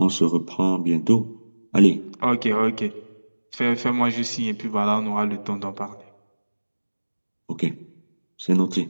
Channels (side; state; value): both; inverted; correlation -1.00